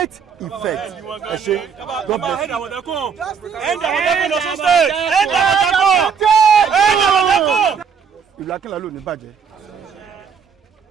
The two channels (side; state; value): left; quieter; 6.6 dB